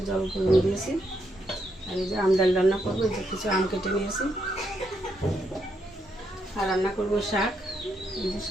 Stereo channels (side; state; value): both; normal; correlation 0.78